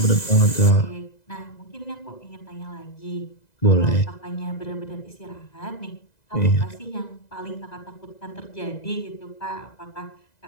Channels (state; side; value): late; right; 2.0 ms